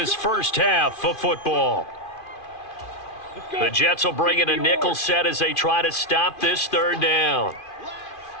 first half of football. The Jets will bring in a nickel set as they try to stop this 3rd down.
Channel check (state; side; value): late; right; 2.4 ms